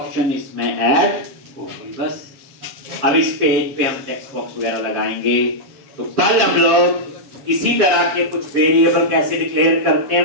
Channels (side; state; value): left; late; 7.2 ms